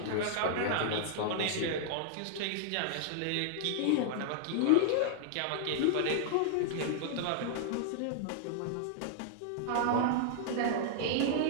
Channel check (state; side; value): different; both; correlation -0.01